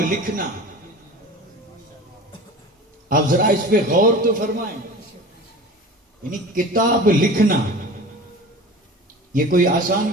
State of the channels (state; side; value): normal; both; correlation 0.37